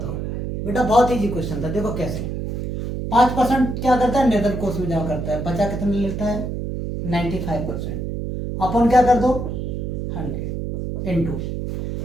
बेटा बहुत इजी क्वेश्चन था। देखो कैसे। 5% क्या करता है? नगद कोष में जमा करता है। बचा कितना लेता है? 95%। अपन क्या कर दो? 100 इंटू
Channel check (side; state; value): right; noise; hum, 4 dB below the sound